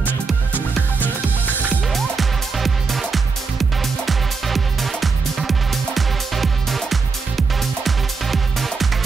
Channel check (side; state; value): left; quieter; 4.6 dB